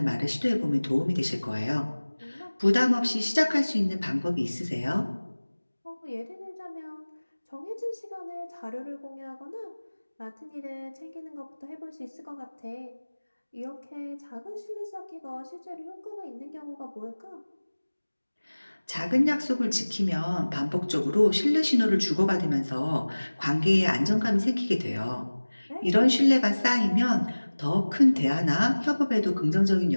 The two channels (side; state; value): both; inverted; correlation -1.00